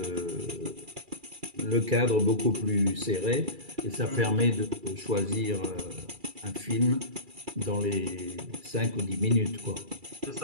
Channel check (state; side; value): late; left; 2.3 ms